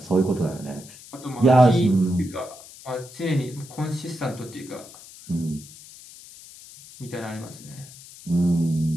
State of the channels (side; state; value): left; noise; hiss, 18 dB below the sound